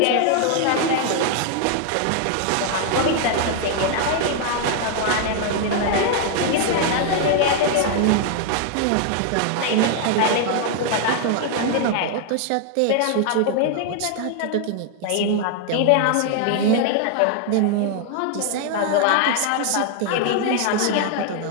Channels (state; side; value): different; both; correlation 0.00